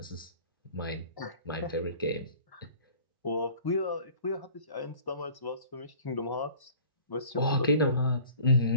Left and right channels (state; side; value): inverted; both; correlation -0.49